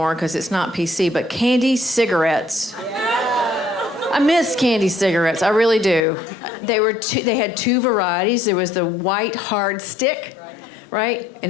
because it's not PC, but candy cigarettes. I miss candy cigarettes, I really do. They had 2 varieties. There was the white hard stick, right? And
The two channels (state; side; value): drops out; right; at 6.1 s